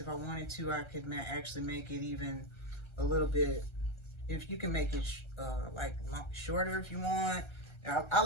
if I wanted to, I could actually make it even a little bit, if you can make it like shorter if you want. I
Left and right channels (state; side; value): late; right; 1.3 ms